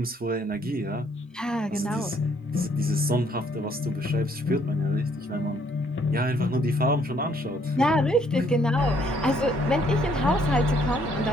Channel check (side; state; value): both; normal; correlation 0.66